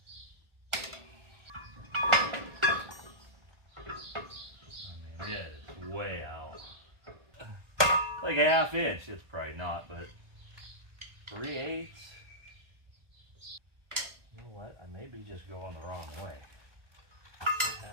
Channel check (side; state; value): left; late; 1.3 ms